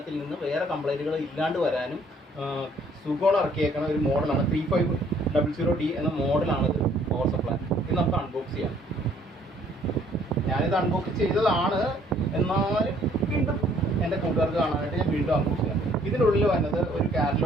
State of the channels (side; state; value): both; normal; correlation 0.61